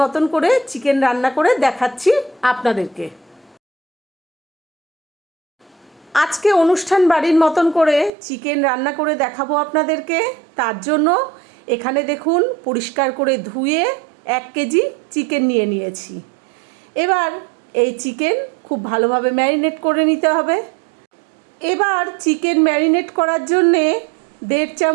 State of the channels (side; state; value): left; drops out; at 8.1 s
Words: মতন করে চিকেন রান্না করে দেখাচ্ছি আপনাদেরকে। আজকে অনুষ্ঠান বাড়ির মতন করে চিকেন রান্না করে দেখাবো আপনাদেরকে। তার জন্য এখানে দেখুন পরিষ্কার করে ধুয়ে 1 কেজি চিকেন নিয়ে নিয়েছি। এবার এই চিকেন খুব ভালোভাবে ম্যারিনেট করে নিতে হবে। এবার চিকেন ম্যারিনেট করার জন্যে 1.5